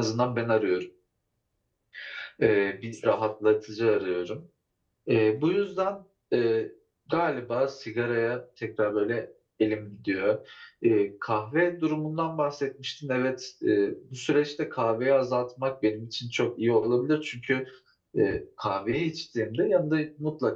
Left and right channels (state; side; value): identical; both; correlation 1.00